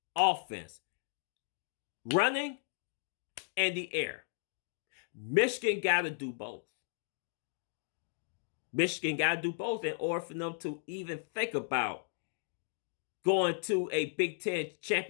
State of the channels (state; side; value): silent; right; digital silence